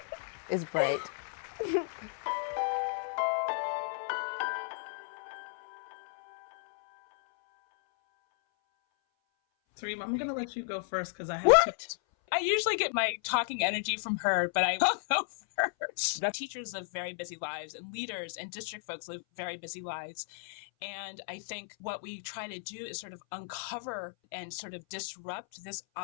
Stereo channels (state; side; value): silent; right; 55 dB below the other